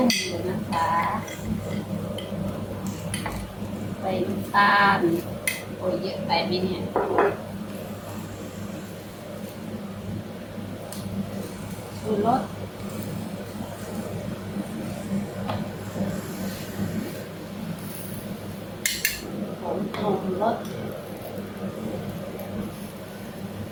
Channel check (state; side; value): identical; both; correlation 1.00